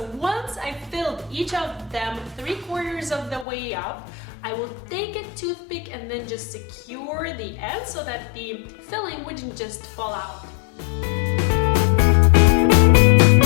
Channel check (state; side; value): drops out; right; at 3.5 s